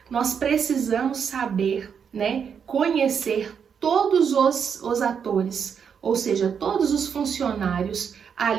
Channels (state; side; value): quieter; left; 7.1 dB